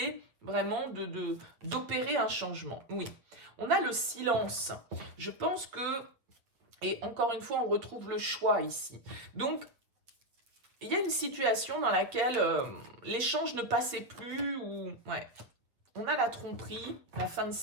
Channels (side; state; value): left; late; 8.3 ms